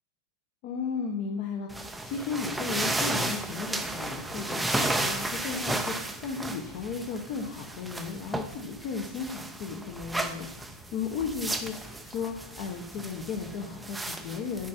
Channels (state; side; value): normal; both; correlation 0.47